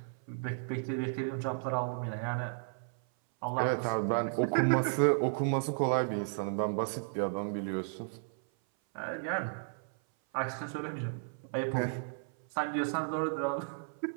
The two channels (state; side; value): silent; left; 55 dB below the other